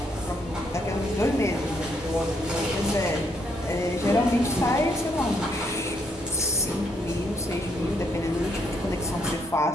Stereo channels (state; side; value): normal; both; correlation 0.72